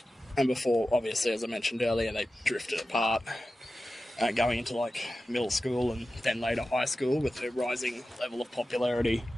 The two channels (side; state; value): both; normal; correlation 0.94